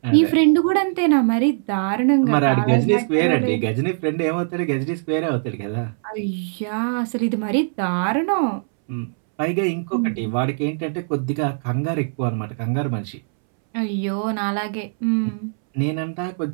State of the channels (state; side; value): silent; left; 65 dB below the other